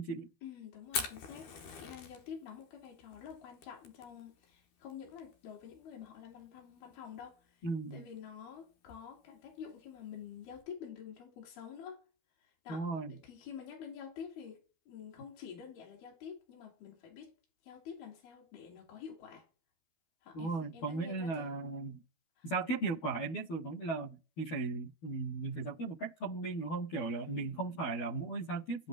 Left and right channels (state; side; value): late; right; 12 ms